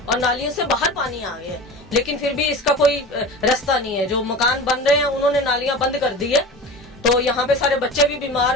नालियों से बाहर पानी आ गया है, लेकिन फिर भी इसका कोई रास्ता नहीं है। जो मकान बन रहे हैं उन्होंने नालियां बंद कर दी है, तो यहाँ पे सारे बच्चे भी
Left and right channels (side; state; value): both; normal; correlation 0.33